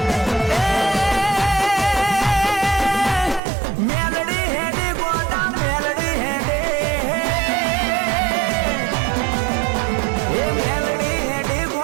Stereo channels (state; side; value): drops out; left; at 3.4 s